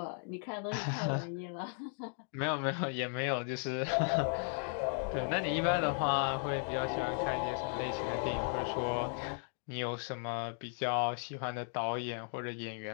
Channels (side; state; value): right; silent; 54 dB below the other